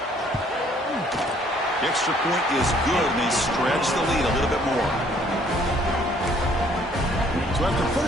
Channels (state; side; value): normal; both; correlation 0.62